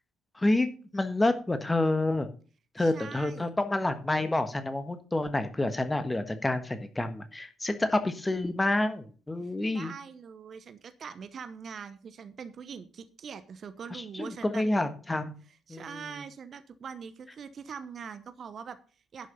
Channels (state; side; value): normal; both; correlation 0.95